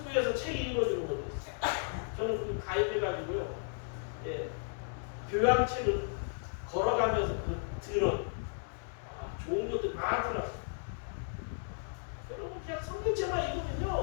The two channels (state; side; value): silent; right; digital silence